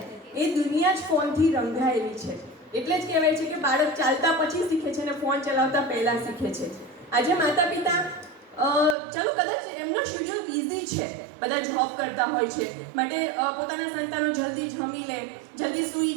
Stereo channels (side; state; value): left; drops out; at 9.0 s